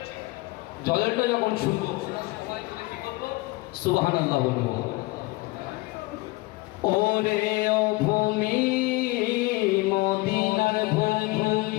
জলেরটা যখন শুনবো সুবহানাল্লাহ বলবো। ওরে ও ভূমি মদিনার ভূমি,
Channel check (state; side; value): quieter; right; 22.4 dB